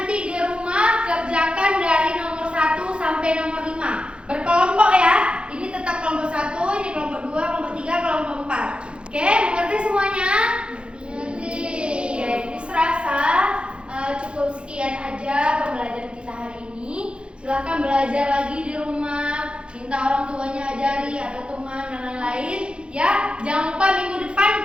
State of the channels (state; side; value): late; left; 0.057 ms